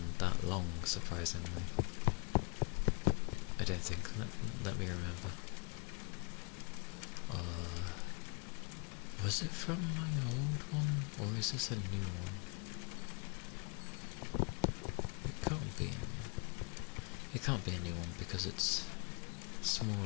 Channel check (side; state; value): right; quieter; 34.1 dB